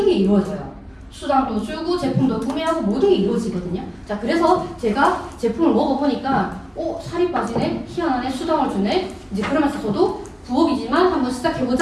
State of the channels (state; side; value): identical; both; correlation 1.00